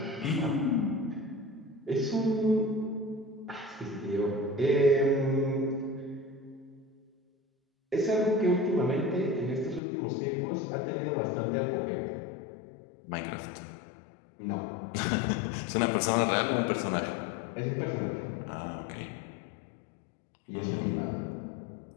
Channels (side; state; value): right; drops out; at 9.8 s